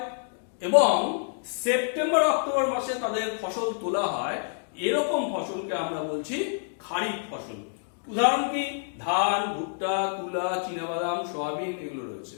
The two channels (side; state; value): right; silent; digital silence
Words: এবং সেপ্টেম্বর অক্টোবর মাসে তাদের ফসল তোলা হয়, এরকম ফসলকে আমরা বলছি খারিফ ফসল। উদাহরণ কি, ধান, ভুট্টা, তুলা, চীনাবাদাম, সয়াবিন এগুলো রয়েছে।